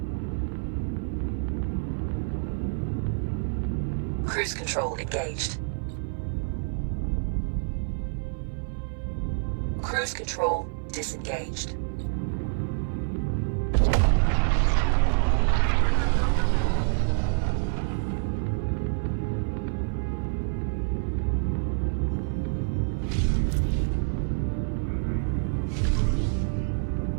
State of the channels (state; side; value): silent; left; digital silence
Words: Cruise control engaged. Cruise control disengaged.